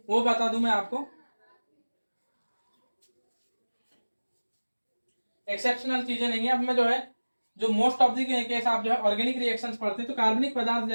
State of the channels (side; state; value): both; inverted; correlation -1.00